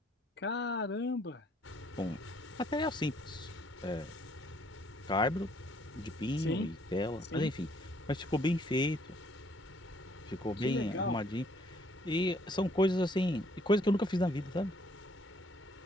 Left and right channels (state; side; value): normal; both; correlation 0.64